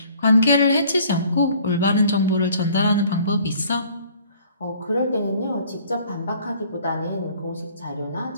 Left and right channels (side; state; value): both; inverted; correlation -0.55